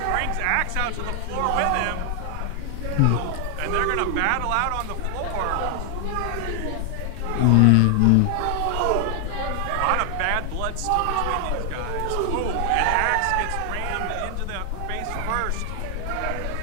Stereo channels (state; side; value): different; both; correlation 0.00